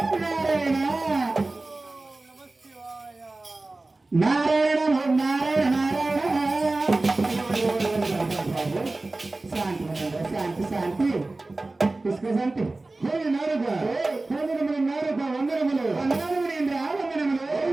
నారాయణ నారాయణ నారాయణ నారాయణ. శాంతి శాంతి శాంతి పుష్క శాంతి. హోలి నారుగా హోమినములు నారుగా వందనములు వందనములేంద్ర వందనములు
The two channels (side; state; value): left; quieter; 3.1 dB